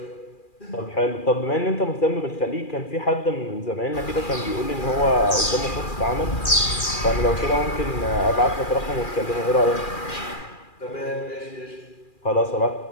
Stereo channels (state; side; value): late; right; 2.4 ms